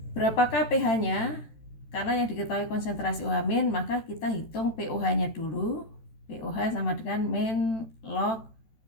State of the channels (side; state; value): right; late; 14 ms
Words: Berapakah pH-nya? Karena yang diketahui konsentrasi OH- maka kita hitung pOH-nya dulu. pOH sama dengan min log